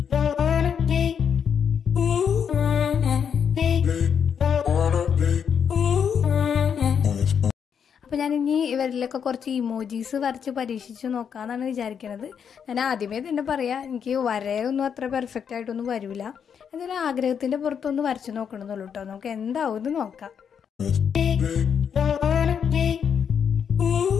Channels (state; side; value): quieter; right; 7.5 dB